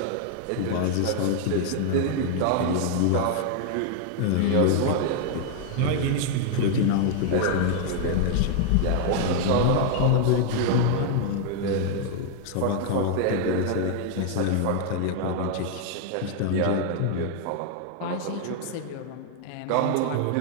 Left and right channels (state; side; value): different; both; correlation 0.00